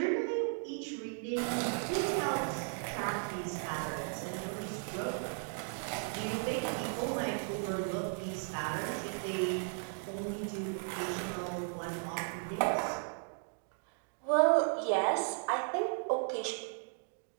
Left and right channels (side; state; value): left; silent; 54 dB below the other